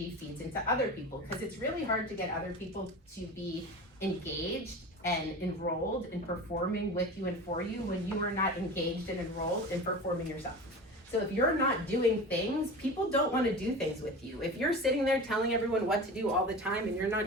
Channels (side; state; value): both; normal; correlation 0.32